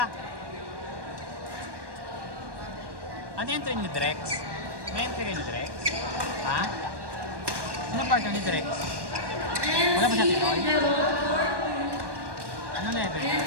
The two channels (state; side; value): late; left; 1.2 ms